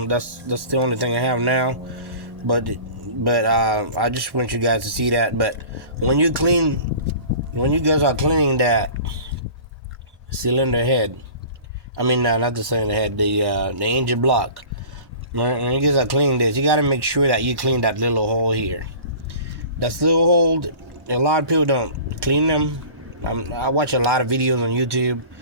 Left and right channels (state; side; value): late; left; 1.1 ms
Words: that's the only thing I have now. But I just want you guys to see that. But when you guys are cleaning that cylinder head, I mean not the cylinder head, the engine block. When you guys are cleaning this, you got to make sure that you clean that little hole here. That little hole, a lot of people don't clean them. I watch a lot of videos on YouTube.